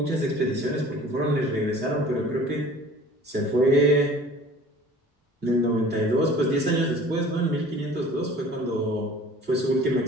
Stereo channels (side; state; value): both; normal; correlation 0.47